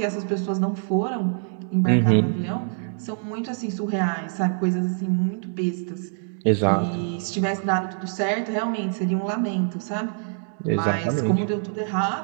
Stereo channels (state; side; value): silent; left; digital silence